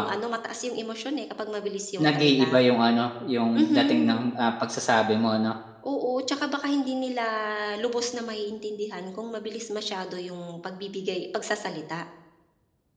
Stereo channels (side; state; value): both; identical; correlation 1.00